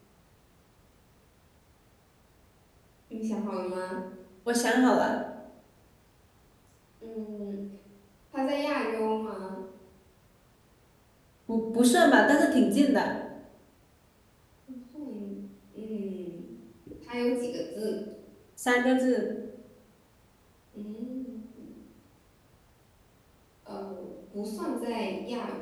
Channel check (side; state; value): both; identical; correlation 1.00